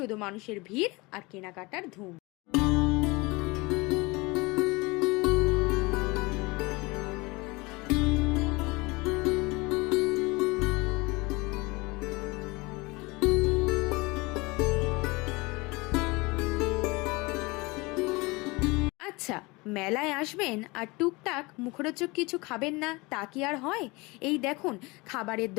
মানুষের ভিড় আর কেনাকাটার ধুম। আচ্ছা, মেলায় আসবেন আর টুকটাক মুখরোচক কিছু খাবেন না, তা কি আর হয়? এই দেখুন, খাবারের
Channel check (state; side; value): quieter; right; 24.7 dB